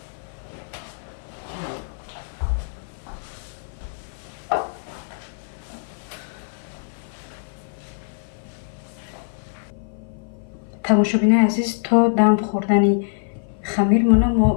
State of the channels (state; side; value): silent; right; 56 dB below the other